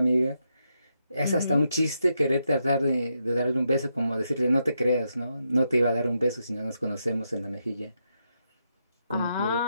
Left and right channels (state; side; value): inverted; both; correlation -0.83